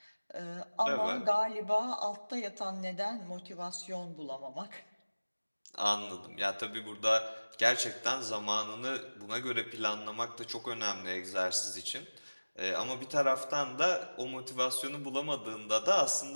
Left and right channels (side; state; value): both; inverted; correlation -1.00